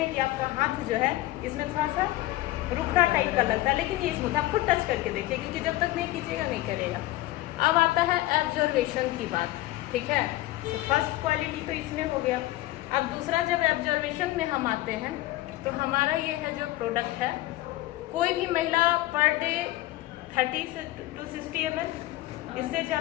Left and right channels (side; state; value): right; quieter; 17.3 dB